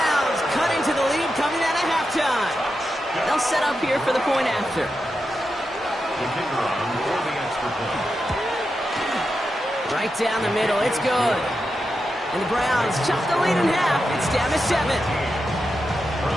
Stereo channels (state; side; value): normal; both; correlation 0.88